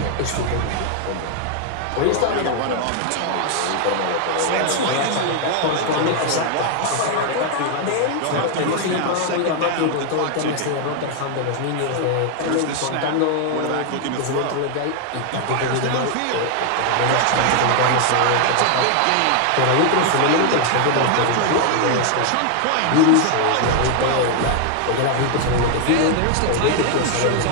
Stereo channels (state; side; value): different; both; correlation 0.00